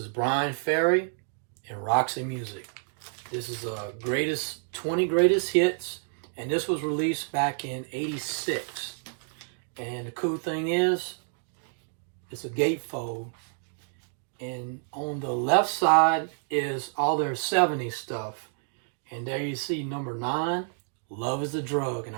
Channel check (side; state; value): left; silent; 59 dB below the other